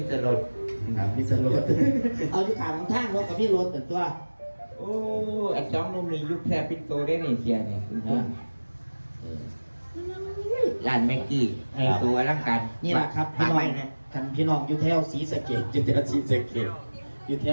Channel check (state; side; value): inverted; both; correlation -1.00